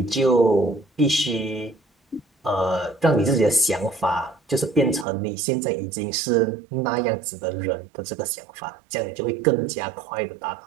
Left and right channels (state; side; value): drops out; left; at 5.1 s